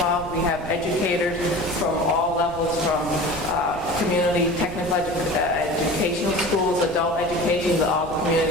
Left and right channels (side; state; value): right; noise; rumble, 13 dB below the sound